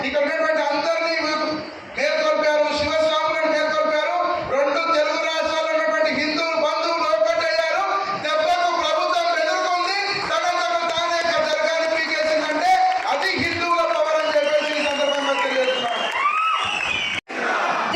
ఇక్కడ ఉన్నటువంటి అందరినీ మేల్కొల్పారు, శివస్వాములను మేల్కొల్పారు. 2 తెలుగు రాష్ట్రాల్లో ఉన్నటువంటి హిందూ బంధువులు ఒక్కటయ్యారు. దెబ్బకు ప్రభుత్వం ఎదుర్కొంది, తనకు తానే దర్గాని పీకేసిందంటే అది హిందువుల పవర్ అని చెప్పేసి ఈ సందర్భంగా తెలియజేస్తున్నాను.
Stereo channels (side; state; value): both; identical; correlation 1.00